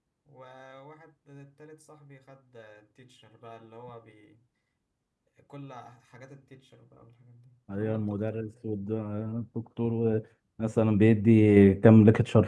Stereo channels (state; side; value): identical; both; correlation 1.00